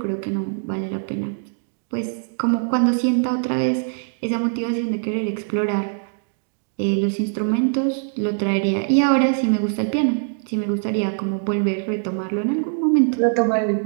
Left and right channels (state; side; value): silent; left; digital silence